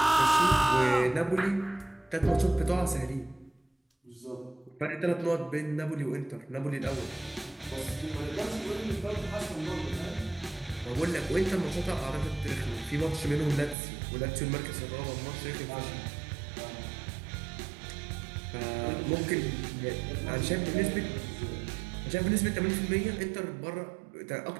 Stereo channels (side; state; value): left; drops out; at 13.8 s